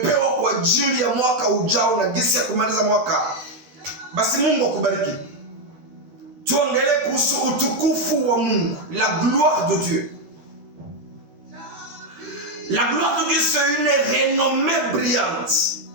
kwa ajili ya mwaka ujao na gisi ya kumaliza mwaka. Basi Mungu akubariki. Tuongelee kuhusu utukufu wa Mungu, la gloire de Dieu. La gloire de Dieu, c'est une renommée brillante.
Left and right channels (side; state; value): left; late; 13 ms